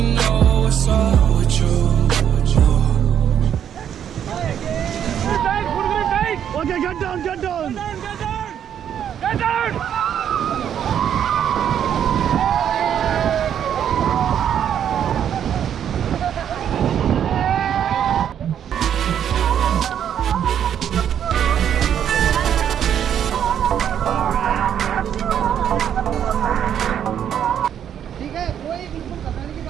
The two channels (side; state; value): left; quieter; 9.3 dB